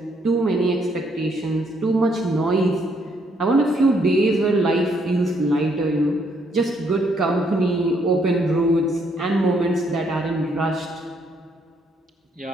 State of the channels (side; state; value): both; normal; correlation 0.71